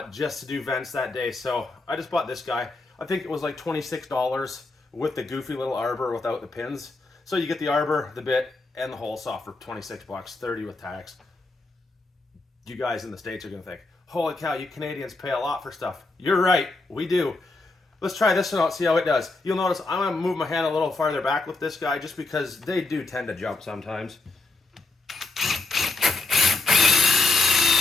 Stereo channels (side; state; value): right; quieter; 3.4 dB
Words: just to do vents that day. So I just bought this guy. I think it was like $26 with the goofy little arbor without the pins. So you get the arbor, the bit, and the hole saw for 26 bucks, 30 with tax. You guys in the States are gonna think, holy cow, you Canadians pay a lot for stuff. You're right, we do. Let's try this one out, see how it does. You'll notice I'm gonna move my hand a little farther back with this guy just because they do tend to jump sometimes.